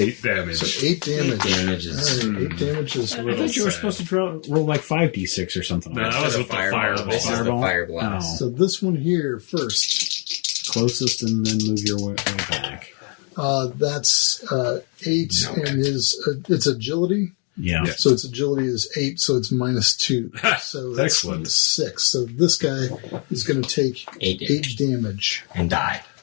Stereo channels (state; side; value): quieter; right; 37.6 dB